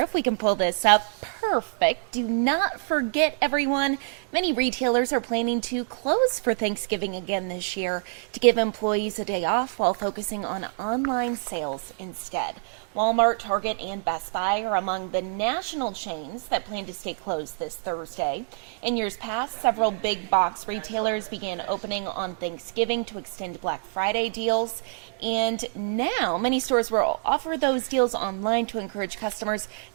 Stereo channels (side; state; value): left; silent; digital silence